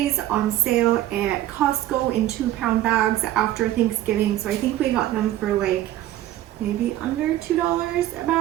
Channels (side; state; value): left; quieter; 13.8 dB